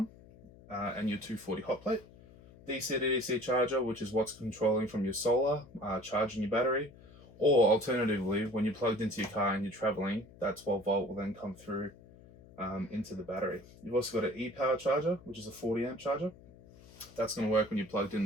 and your 240 hot plate. DC to DC charger, which is what's controlling from your solar, charging your battery. Or alternatively, when you're plugged into your car and you're traveling, that 12 volt will then come through into the battery. You've also got an e-power charger, which is a 40 amp charger. That's going to work when you're plugged in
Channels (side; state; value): left; noise; hum, 22 dB below the sound